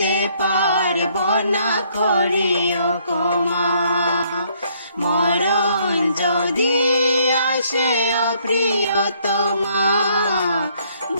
পারবো না করিও ক্ষমা। মরণ যদি আসে অপ্রিয়তমা,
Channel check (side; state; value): both; inverted; correlation -0.66